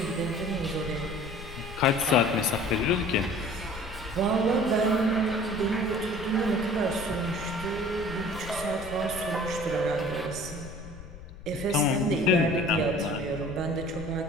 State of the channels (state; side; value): noise; left; rumble, 13 dB below the sound